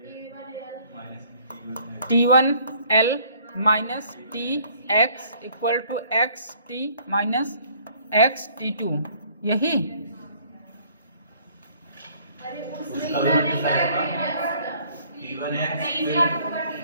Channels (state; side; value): inverted; both; correlation -0.59